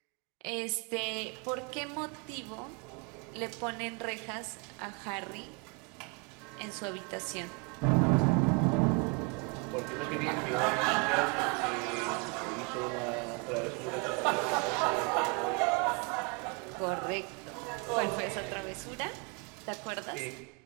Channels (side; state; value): left; quieter; 32.2 dB